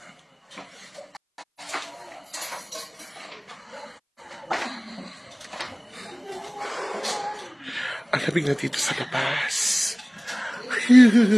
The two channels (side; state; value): both; identical; correlation 1.00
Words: Ang labig na dito sa labas.